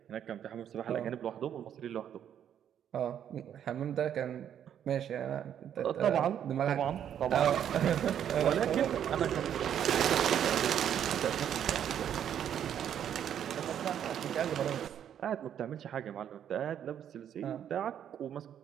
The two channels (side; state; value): left; quieter; 9.5 dB